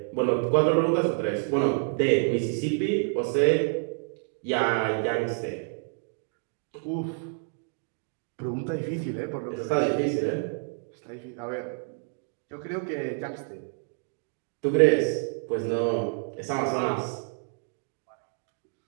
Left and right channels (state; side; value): silent; left; 56 dB below the other